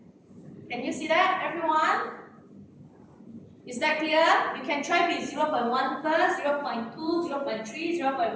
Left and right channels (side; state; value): both; identical; correlation 1.00